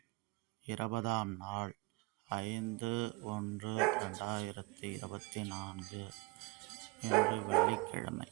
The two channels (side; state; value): left; quieter; 26.1 dB